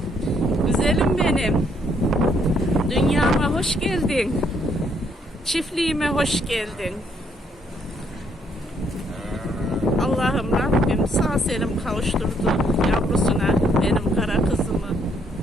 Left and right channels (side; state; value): both; normal; correlation 0.70